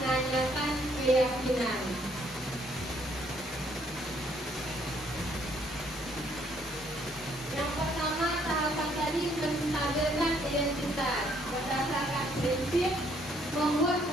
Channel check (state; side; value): normal; both; correlation 0.67